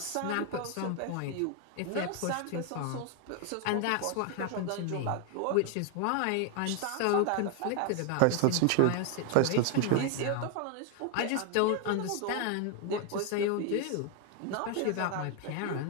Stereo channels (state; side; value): different; both; correlation 0.01